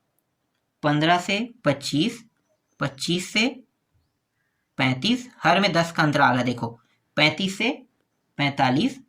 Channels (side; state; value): both; identical; correlation 1.00